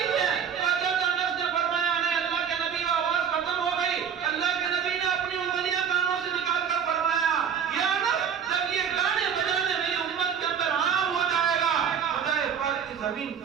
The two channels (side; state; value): left; quieter; 7.8 dB